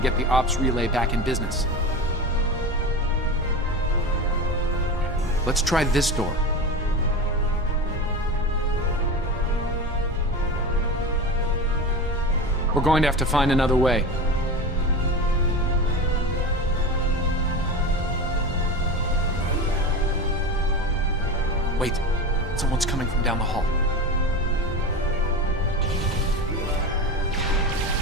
the ops relay back in business. Let's try this door. We're going to have to find another way. Wait, someone's coming from down the hall.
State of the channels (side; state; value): both; normal; correlation 0.26